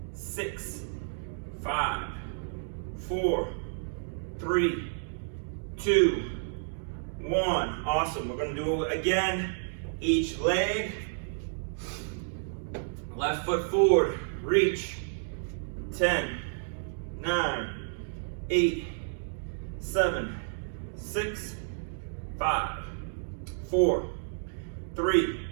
6, 5, 4, 3, 2, 1. Awesome. We're going to do it again. Each leg. Left foot forward. Reach. 10, 9, 8, 7, 6, 5, 4, 3,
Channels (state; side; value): silent; left; digital silence